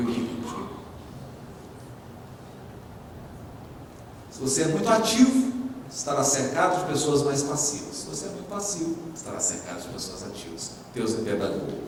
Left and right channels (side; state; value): both; identical; correlation 1.00